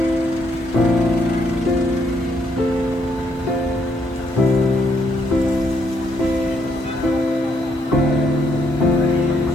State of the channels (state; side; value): normal; both; correlation 0.73